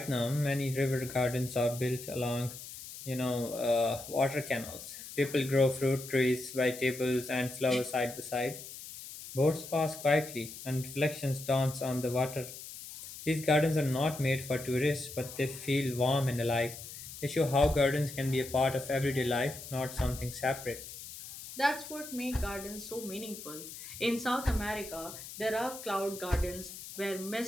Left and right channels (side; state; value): left; noise; hiss, 12 dB below the sound